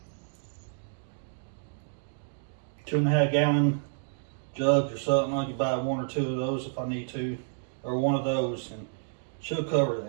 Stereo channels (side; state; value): left; silent; digital silence